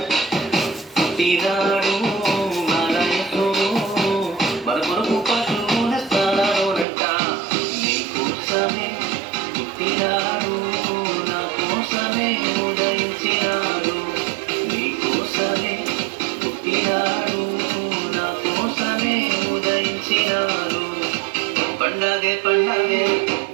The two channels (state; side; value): drops out; left; at 6.9 s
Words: పుట్టినాడు మనయసుడు మన కొరకు పశువుల స్థానాలోనట నీ కోసమే పుట్టినాడు నా కోసమే ఉదయించినాడు నీ కోసమే పుట్టినాడు నా కోసమే ఉదయించినాడు పండగే పండగే